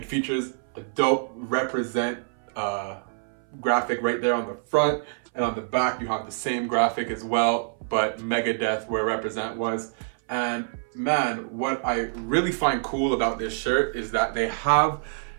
features a dope Represent graphic right there on the front, and on the back you have the same graphic as well, but Megadeth where Represent was. And man, what I really find cool about this shirt is that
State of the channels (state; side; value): silent; left; 60 dB below the other